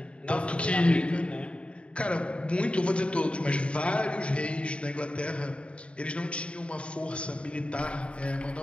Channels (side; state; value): right; late; 0.059 ms